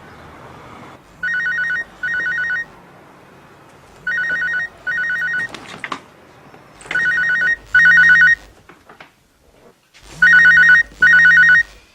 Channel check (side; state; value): both; identical; correlation 1.00